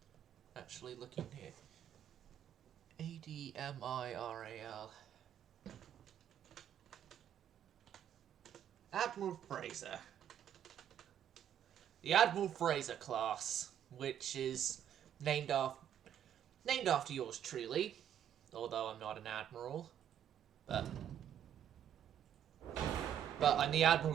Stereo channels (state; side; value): quieter; left; 9.9 dB